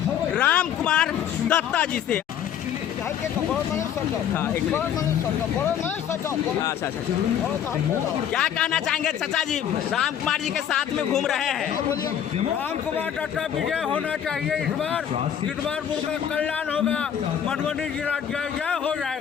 राम कुमार दत्ता जी से। क्या कहना चाहेंगे चाचा जी, राम कुमार जी के साथ में घूम रहे हैं? राम कुमार दत्ता विजय होना चाहिए इस बार का कल्याण होगा, मधुबनी जिला जय जय हो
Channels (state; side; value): quieter; right; 9.3 dB